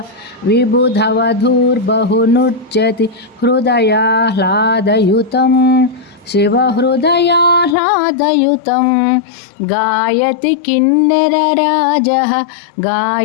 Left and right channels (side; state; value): right; drops out; at 7.8 s